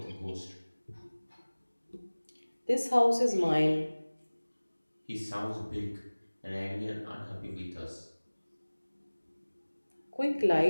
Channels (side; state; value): both; inverted; correlation -1.00